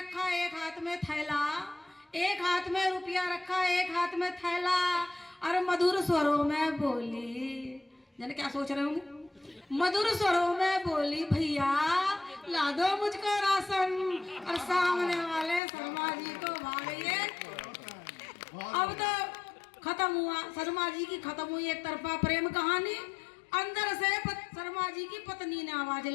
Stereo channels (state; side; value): drops out; right; at 15.6 s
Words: एक हाथ में थैला, एक हाथ में रुपया रखा, एक हाथ में थैला। और मधुर स्वरों में बोली, जाने क्या सोच रहे होंगे, मधुर स्वरों में बोली भैया ला दो मुझको राशन। और सामने वाले शर्मा जी को भागइए। अब तो खत्म हुआ, शर्मा जी की खत्म हुई एक तरफा प्रेम कहानी। अंदर से शर्मा जी की पत्नी ने आवाज